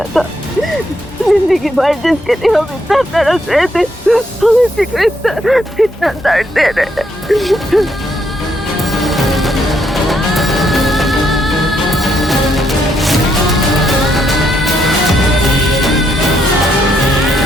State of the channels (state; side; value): normal; both; correlation 0.75